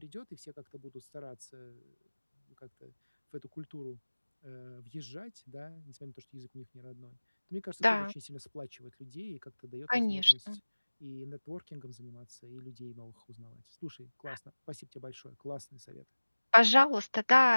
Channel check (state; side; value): inverted; both; correlation -1.00